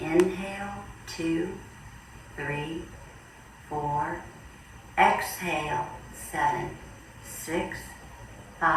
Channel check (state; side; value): identical; both; correlation 1.00